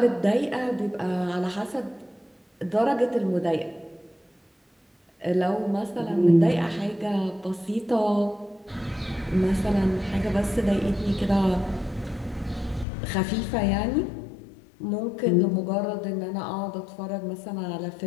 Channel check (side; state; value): right; drops out; at 12.9 s